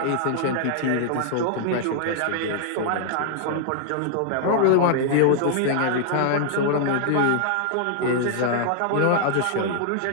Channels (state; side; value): different; both; correlation -0.01